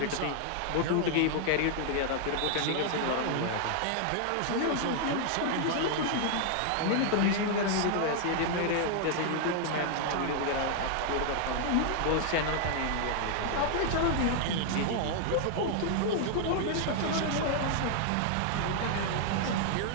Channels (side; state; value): both; different; correlation 0.00